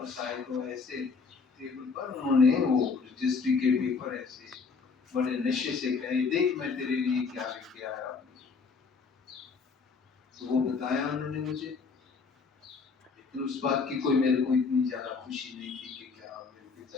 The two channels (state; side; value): quieter; right; 4.9 dB